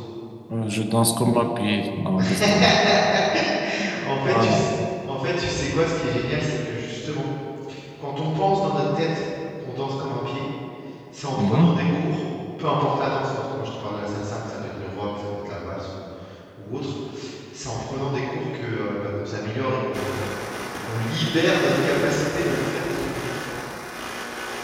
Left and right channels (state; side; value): identical; both; correlation 1.00